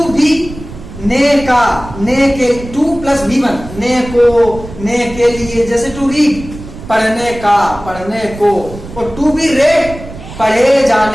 बी ने का, ने के, टू प्लस बी वन, ने को, ने के लिए, जैसे टू रीड पढ़ने का, पढ़ने को, और टू बी रेड पढ़े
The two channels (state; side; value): noise; right; rumble, 14 dB below the sound